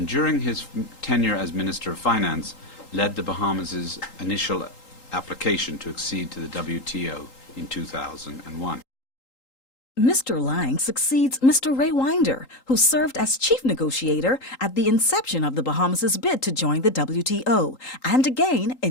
during his tenure as Minister of Finance, led the Bahamas' initial application to accede to the WTO in 2001. Mr. Lang succeeds Mr. Ray Winder, who served as chief negotiator at the inception of the Bahamas' bid to join the WTO, and again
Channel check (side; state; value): right; late; 3.8 ms